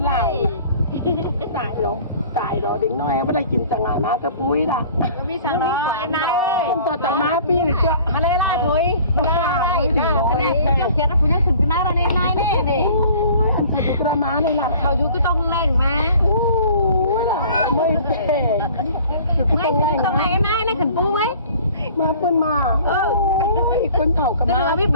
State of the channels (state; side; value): inverted; both; correlation -0.49